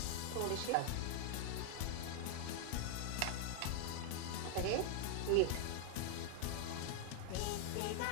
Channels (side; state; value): both; different; correlation 0.00